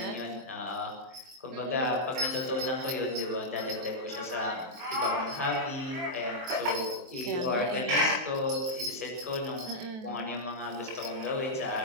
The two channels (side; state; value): left; late; 23 ms